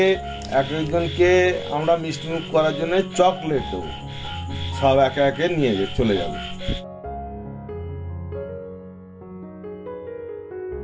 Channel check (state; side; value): identical; both; correlation 1.00